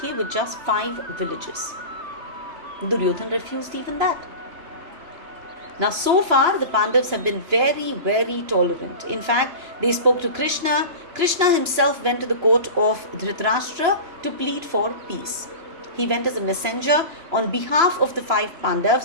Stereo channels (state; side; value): late; left; 2.9 ms